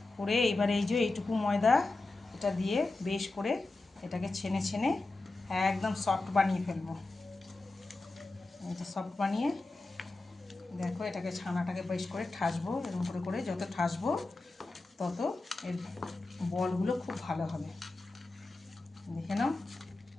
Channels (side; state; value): right; quieter; 3.2 dB